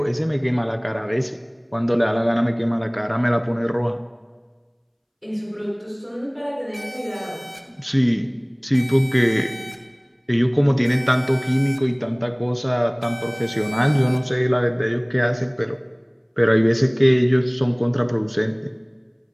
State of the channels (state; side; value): identical; both; correlation 1.00